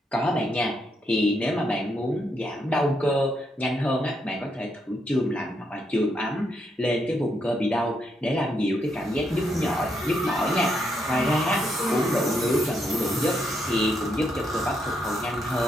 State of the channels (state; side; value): normal; both; correlation 0.78